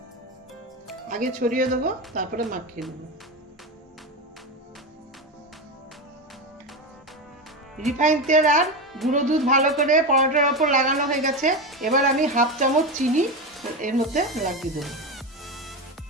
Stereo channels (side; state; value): both; normal; correlation 0.17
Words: আগে ছড়িয়ে দেবো, তারপরে মাখিয়ে নেব। রিফাইন তেল আর গুঁড়ো দুধ ভালো করে পরোটার ওপর লাগানো হয়ে গেছে। এবার আমি 1/2 চামচ চিনি এর মধ্যে লাগিয়ে দেবো।